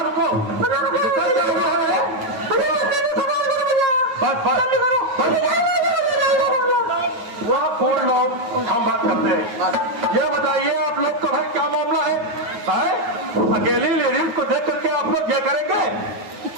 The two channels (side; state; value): left; late; 9.3 ms